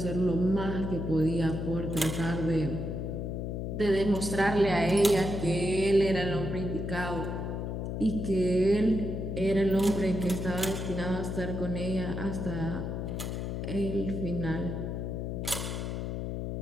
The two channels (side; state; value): left; noise; hum, 3 dB below the sound